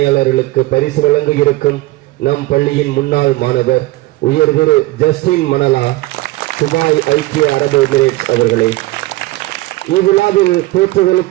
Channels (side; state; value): left; quieter; 19.0 dB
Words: பரிசு வழங்க இருக்கும் நம் பள்ளியின் முன்னாள் மாணவர் உயர் திரு ஜஸ்டின் மணலா, துபாய் ஐக்கிய அரபு எமிரேட்ஸ் அவர்களே, இவ்விழாவில்